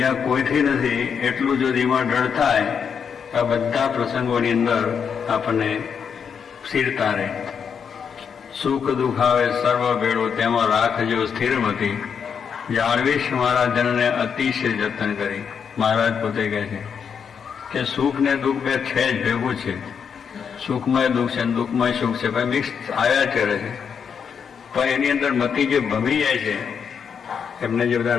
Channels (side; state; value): right; quieter; 6.9 dB